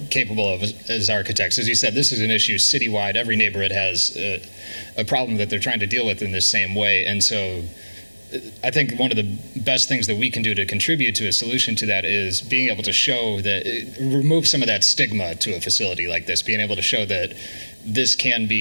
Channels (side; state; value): both; inverted; correlation -1.00